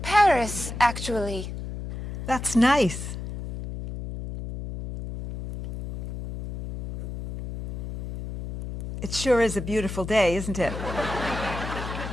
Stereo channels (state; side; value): noise; left; hum, 8 dB below the sound